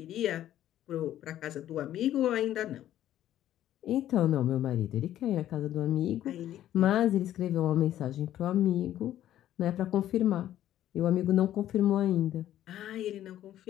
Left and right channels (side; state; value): right; quieter; 12.3 dB